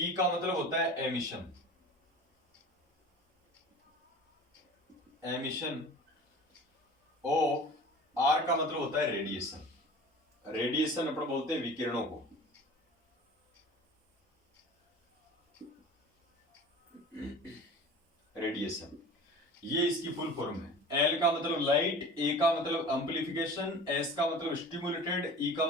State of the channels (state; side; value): normal; both; correlation 0.39